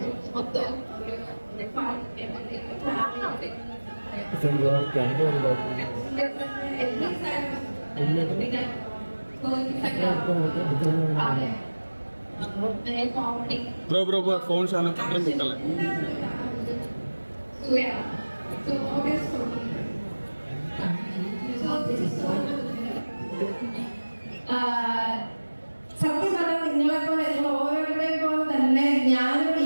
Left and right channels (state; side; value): inverted; both; correlation -1.00